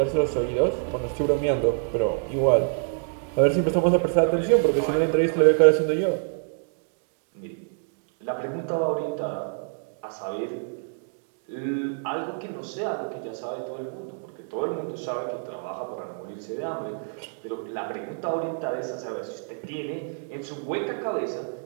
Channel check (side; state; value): left; silent; digital silence